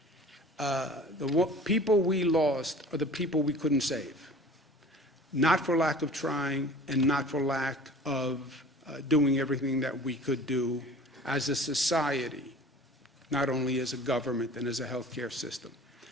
The people we lost are the people we couldn't save. Not for lack of trying, and not for lack of doing everything that we could do as a society, not only as a government and as a healthcare system.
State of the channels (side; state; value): both; normal; correlation 0.43